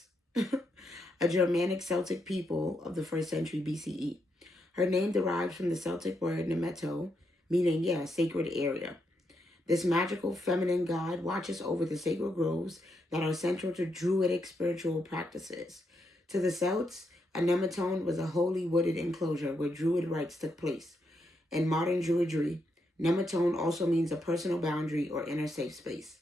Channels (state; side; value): normal; both; correlation 0.80